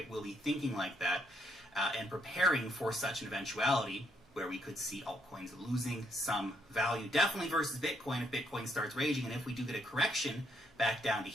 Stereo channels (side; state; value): both; normal; correlation 0.73